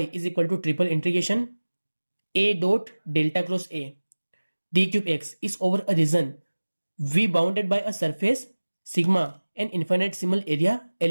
is equal to triple integration A dot delta cross A D cube x is over a region V bounded by a surface sigma an infinitesimal area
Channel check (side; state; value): both; inverted; correlation -1.00